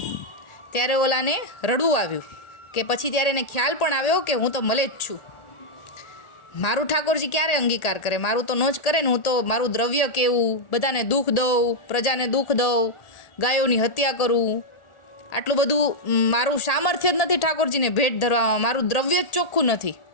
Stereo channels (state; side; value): late; right; 1.8 ms